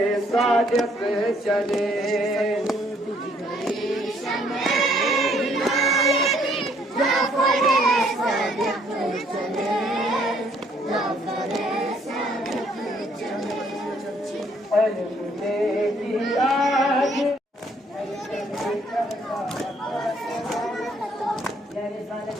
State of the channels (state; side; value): normal; both; correlation 0.65